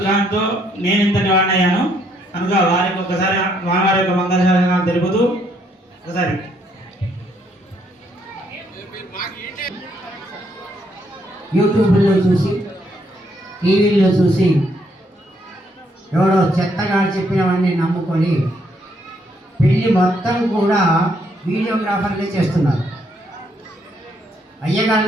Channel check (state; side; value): normal; both; correlation 0.72